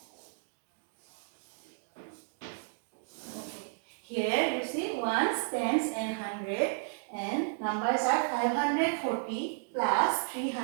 Here you see ones, tens and hundred, and numbers are 540 plus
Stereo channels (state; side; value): silent; left; digital silence